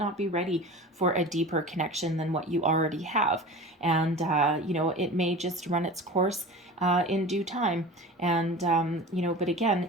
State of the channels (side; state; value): both; normal; correlation 0.35